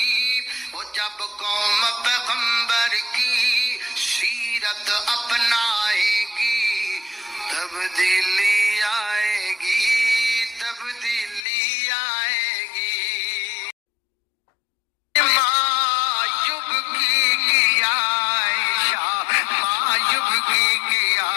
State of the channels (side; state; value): right; drops out; at 11.5 s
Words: वो जब कौम पैगंबर की सीरत अपनाएगी तब्दीली आएगी, तब्दीली आएगी। मायूब की आयशा, मायूब की